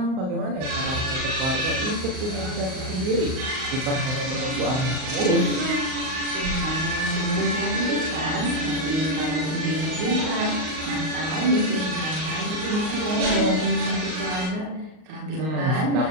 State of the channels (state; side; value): late; left; 38 ms